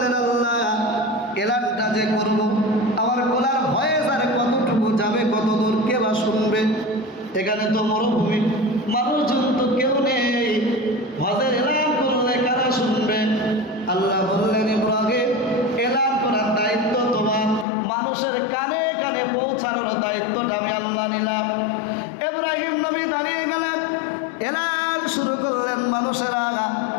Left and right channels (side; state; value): right; drops out; at 17.7 s